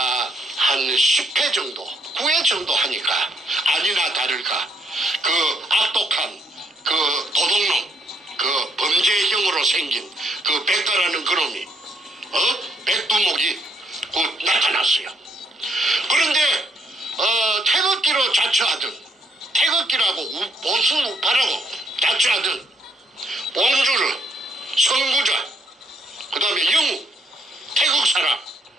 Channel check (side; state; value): both; normal; correlation 0.72